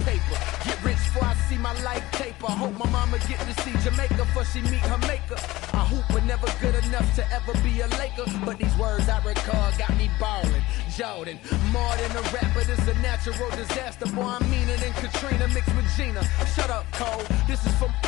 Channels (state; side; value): quieter; right; 18.6 dB